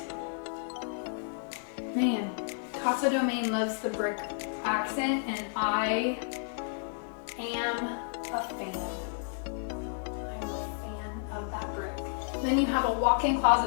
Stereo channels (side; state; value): right; silent; 57 dB below the other